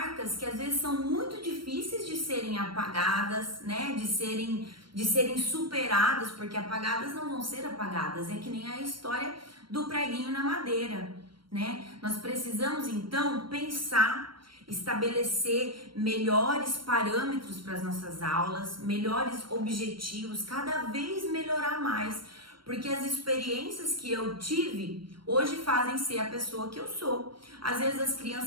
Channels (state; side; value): late; left; 0.73 ms